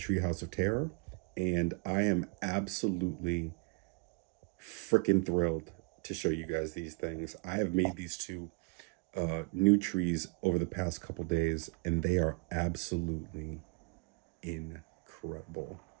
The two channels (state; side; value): quieter; left; 32.2 dB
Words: of Terror. And I am absolutely freaking thrilled to show you guys these things. I have made these two new trees over the past couple days and they are absolutely incredible.